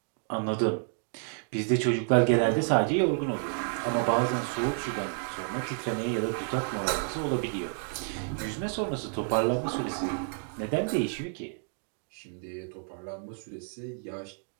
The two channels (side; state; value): left; silent; 58 dB below the other